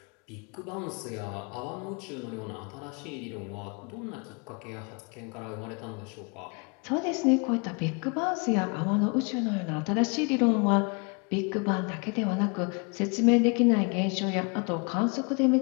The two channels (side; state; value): right; quieter; 33.3 dB